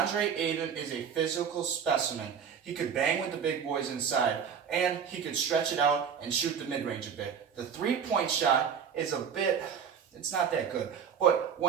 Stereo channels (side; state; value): left; quieter; 7.3 dB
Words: Ayton is a physical specimen. He could bang with the big boys inside, and he could stretch it out and shoot the mid-range a bit. The three-point shot is it's not that good. But